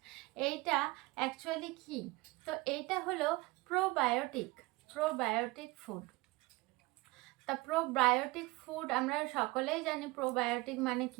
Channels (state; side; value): quieter; left; 22.5 dB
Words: এইটা অ্যাকচুয়ালি কি? তো এইটা হলো প্রোবায়োটিক ফুড। তা প্রোবায়োটিক ফুড আমরা সকলেই জানি। প্রোবায়োটিক মানে